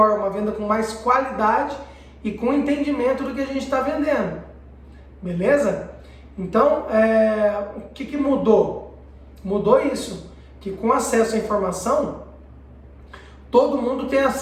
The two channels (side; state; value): both; identical; correlation 1.00